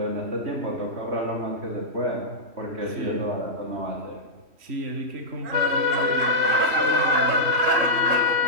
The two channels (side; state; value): left; late; 3.1 ms